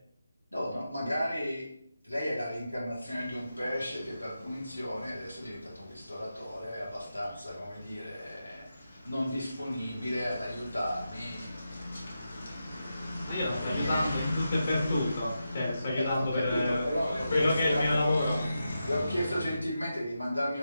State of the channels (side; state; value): both; inverted; correlation -0.88